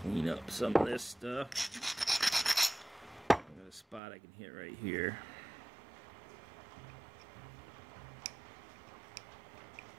up some of this stuff. I got a spot I can hit right here.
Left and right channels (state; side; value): drops out; left; at 4.0 s